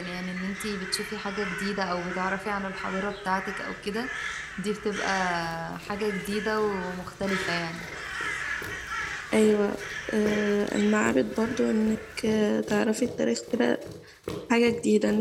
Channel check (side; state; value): both; identical; correlation 1.00